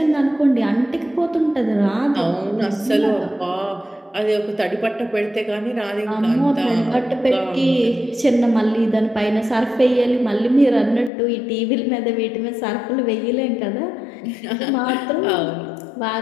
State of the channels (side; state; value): right; drops out; at 11.1 s